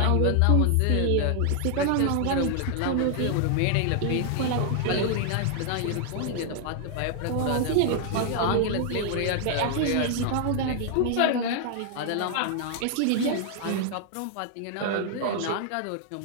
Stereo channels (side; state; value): both; different; correlation 0.00